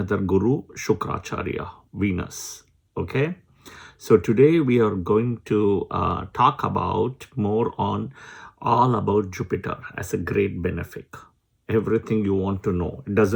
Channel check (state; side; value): identical; both; correlation 1.00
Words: Guru, Shukracharya, Venus. Okay, so today we are going to talk about more on all about Jupiter as a great benefic. Everything you want to know, it